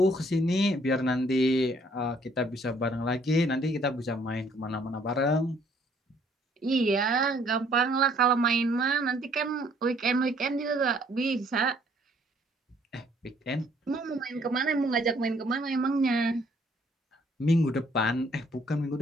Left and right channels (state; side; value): normal; both; correlation 0.63